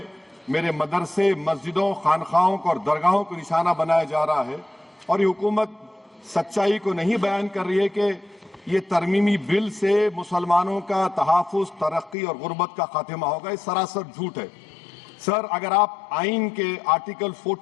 میرے مدرسے، مسجدوں، خانقاہوں اور درگاہوں کو نشانہ بنایا جا رہا ہے۔ اور یہ حکومت سچائی کو نہیں بیان کر رہی ہے کہ یہ ترمیمی بل سے مسلمانوں کا تحفظ، ترقی اور غربت کا خاتمہ ہوگا۔ یہ سراسر جھوٹ ہے۔ سر، اگر آپ آئین کے آرٹیکل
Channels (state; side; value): drops out; right; at 12.2 s